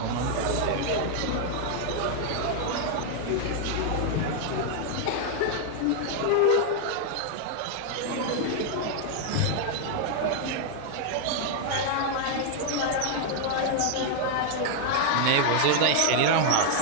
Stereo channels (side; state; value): both; different; correlation 0.00